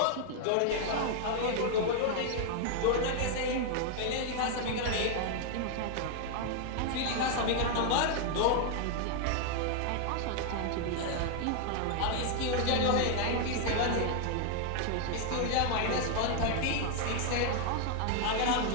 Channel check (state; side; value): different; both; correlation 0.00